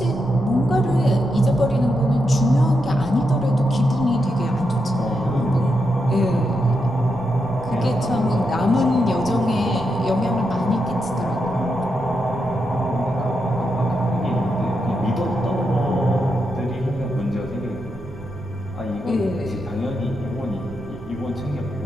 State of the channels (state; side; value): noise; right; rumble, 16 dB below the sound